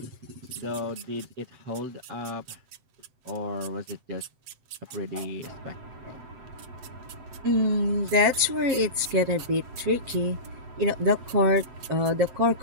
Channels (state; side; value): late; left; 7.8 ms